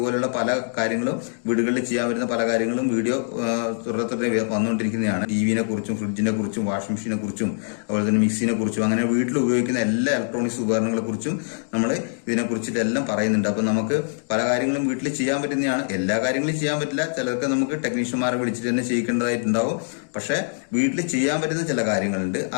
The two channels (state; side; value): silent; right; digital silence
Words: പല കാര്യങ്ങളും വീടുകളിൽ ചെയ്യാൻ വരുന്ന പല കാര്യങ്ങളും വീഡിയോ തുടരെ വന്നുകൊണ്ടിരിക്കുന്നതാണ്. ടിവിനെ കുറിച്ചും ഫ്രിഡ്ജിനെ കുറിച്ചും വാഷിംഗ് മെഷീനെ കുറിച്ചും അതുപോലെ തന്നെ മിക്സിനെ കുറിച്ചും അങ്ങനെ വീട്ടിൽ ഉപയോഗിക്കുന്ന എല്ലാ ഇലക്ട്രോണിക്സ് ഉപകരണങ്ങളെ കുറിച്ചും നമ്മൾ ഇതിനെ കുറിച്ചിട്ട് എല്ലാം പറയുന്നുണ്ട്. അപ്പൊ നമുക്ക് പല കാര്യങ്ങളും വീട്ടിൽ ചെയ്യാൻ പറ്റുന്നതാണ്. എല്ലാ കാര്യങ്ങളും ചെയ്യാൻ പറ്റില്ല, ചിലർക്ക് നമുക്ക് ടെക്നീഷ്യന്മാരെ വിളിച്ചിട്ട് തന്നെ ചെയ്യിക്കേണ്ടതായിട്ടുണ്ടാവും. പക്ഷെ വീട്ടിൽ ചെയ്യാൻ പറ്റുന്ന ചില കാര്യങ്ങളുണ്ട്,